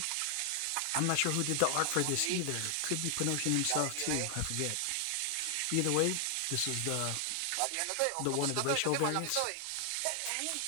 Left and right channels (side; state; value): both; different; correlation 0.00